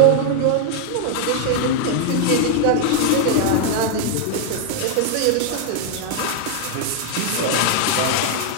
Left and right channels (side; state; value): both; different; correlation 0.00